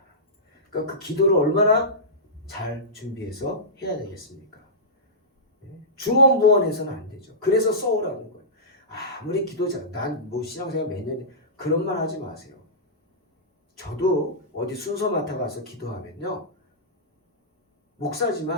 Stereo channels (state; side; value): normal; both; correlation -0.17